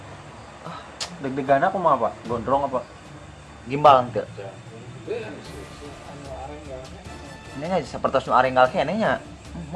Deg-degan aku mah apa? Gondrong apa? gimbal teu ini nya sapertos nu arenggal keneh nya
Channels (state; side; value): identical; both; correlation 1.00